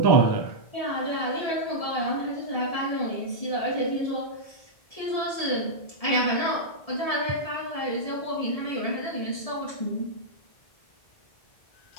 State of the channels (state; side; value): late; right; 1.7 ms